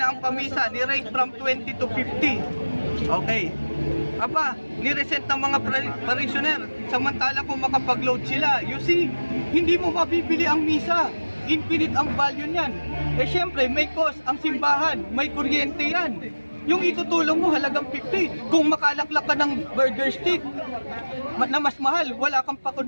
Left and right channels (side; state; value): both; inverted; correlation -1.00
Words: ang pamisa ni rate from 20 to 50. Okay. Aba, ni-reset ng mga parishioner, samantala kung makapag-load sila. You see, hindi mo mabibili ang misa. Infinite ang value niyan. Eh syempre, may cost ang simbahan, may kuryente yan. Yung itutulong mo halagang 50. Kung makalaklak ka ng burger stick na mas mahal, wala kang